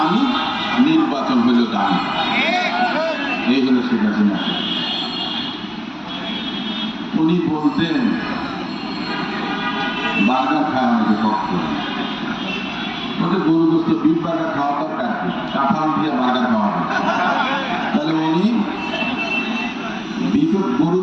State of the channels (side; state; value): both; identical; correlation 1.00